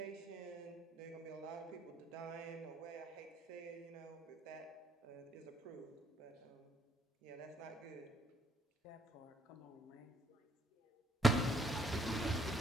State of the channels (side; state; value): both; normal; correlation 0.67